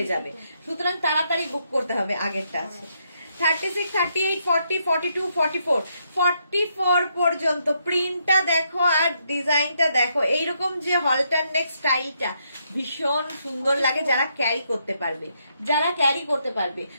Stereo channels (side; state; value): both; inverted; correlation -0.76